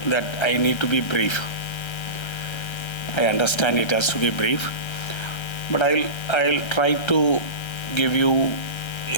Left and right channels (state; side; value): late; right; 1.3 ms